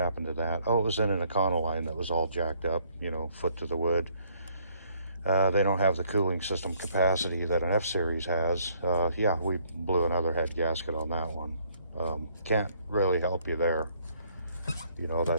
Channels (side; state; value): both; inverted; correlation -0.65